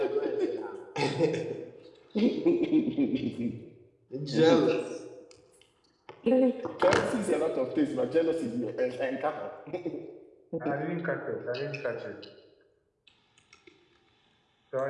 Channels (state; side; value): identical; both; correlation 1.00